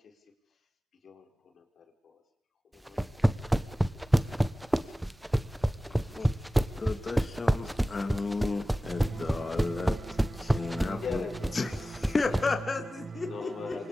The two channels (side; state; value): both; normal; correlation 0.96